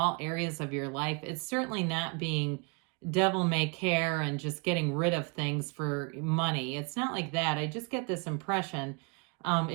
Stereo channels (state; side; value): quieter; left; 32.6 dB